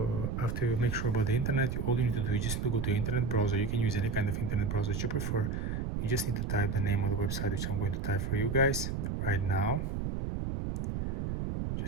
after you make sure about the internet, all you need to do is just need to go to internet browser. You can use any kind of internet browser that you prefer. You just need to type the name of the website, which I'm going to type for you guys right now.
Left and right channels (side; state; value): right; noise; rumble, 2 dB below the sound